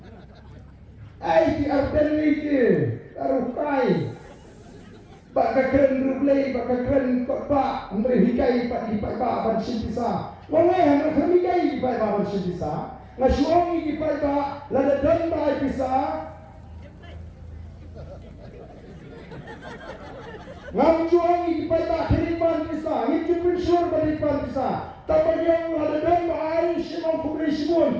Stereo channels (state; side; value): identical; both; correlation 1.00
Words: Di arden itu, arukai. Baka keren rublei, baka keren kota. Andre hikai pak di Paiba ban simpisa. Wong yang kami hikai di Paiba ban simpisa. Ngasuangi di Paiba lada dan bai pisah. Ngamjuang di Paiba kiripan bisa, itu pensur beripan bisa. Tapi yang ada dan air simang